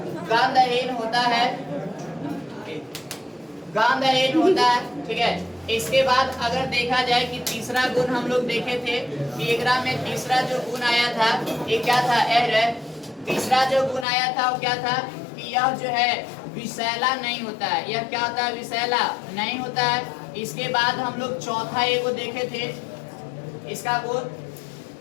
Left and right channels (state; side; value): drops out; right; at 14.1 s